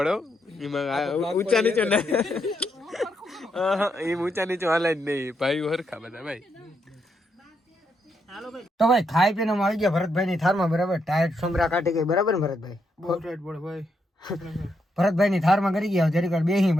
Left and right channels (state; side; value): normal; both; correlation 0.79